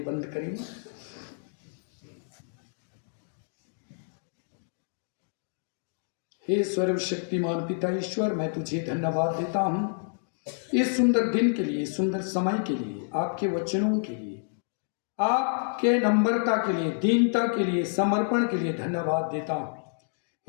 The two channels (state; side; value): silent; right; digital silence